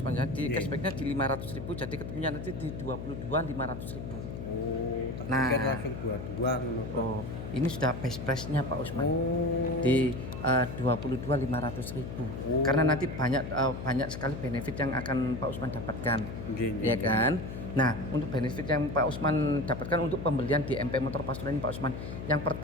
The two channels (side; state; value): left; noise; hum, 7 dB below the sound